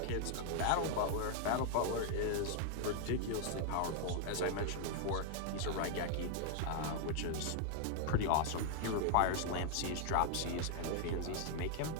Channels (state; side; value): different; both; correlation 0.00